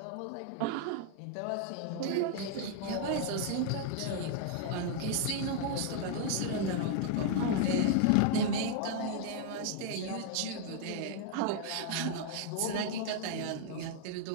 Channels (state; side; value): different; both; correlation 0.00